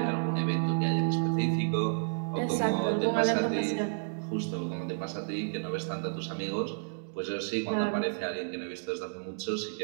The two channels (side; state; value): left; silent; digital silence